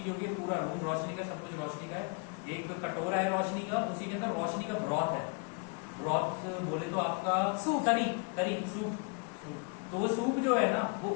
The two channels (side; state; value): right; quieter; 34.0 dB